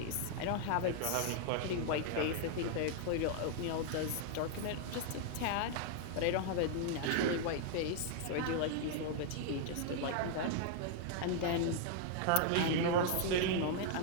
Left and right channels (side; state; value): both; different; correlation 0.00